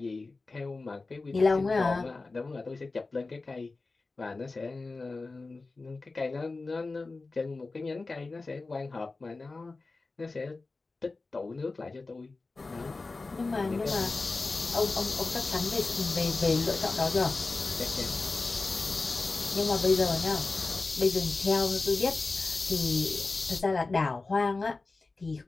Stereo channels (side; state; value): right; quieter; 3.6 dB